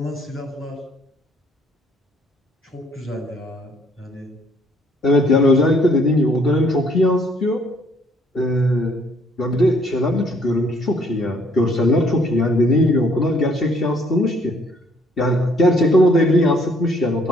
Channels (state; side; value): normal; both; correlation 0.64